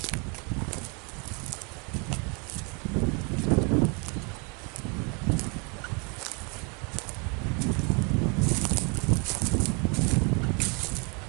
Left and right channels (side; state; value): left; quieter; 31.9 dB